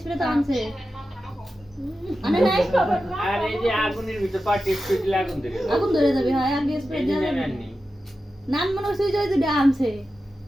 তো আনছে আনে নাই আর এই যে আগুনের ভিতর পাটি স্প্রে দিলে আগুন ধরে যাবে হয় আগে স্প্রে দিয়ে নান মনে হচ্ছে যে দুটো আনছে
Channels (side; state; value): both; normal; correlation 0.92